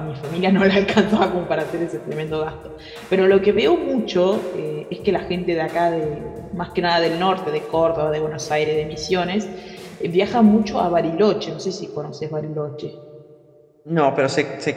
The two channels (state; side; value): identical; both; correlation 1.00